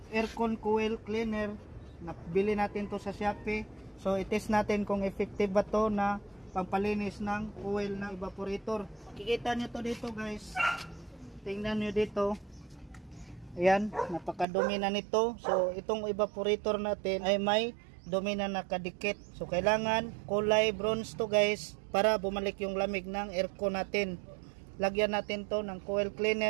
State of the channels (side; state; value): left; drops out; at 14.5 s